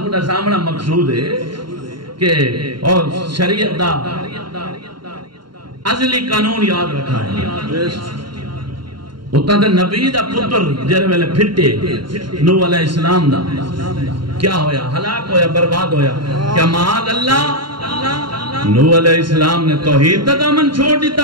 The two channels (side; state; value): left; late; 0.72 ms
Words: کو سامنا مقصود ہے کہ اور شریعت دا ازلی قانون یاد رکھا ہے. اتنا دے نبی دا پتر جرے ویلے پھٹے نوح علیہ السلام دا کیا ہویا؟ ہلاک ہویا، برباد ہویا. کیا معاذ اللہ نوح علیہ السلام نے توحید دا دامن چھوڑ